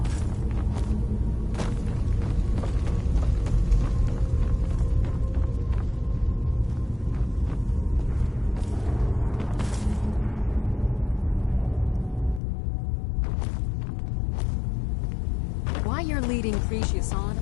Why you're leading Cretius on,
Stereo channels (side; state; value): right; drops out; at 12.4 s